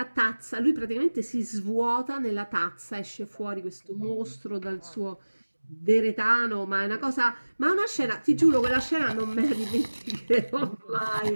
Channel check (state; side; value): inverted; both; correlation -1.00